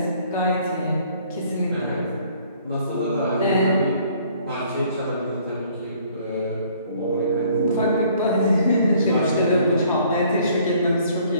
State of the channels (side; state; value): both; inverted; correlation -0.59